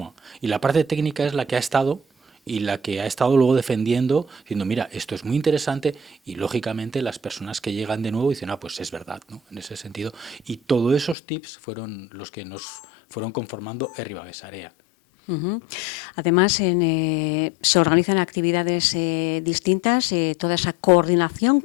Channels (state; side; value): drops out; right; at 11.2 s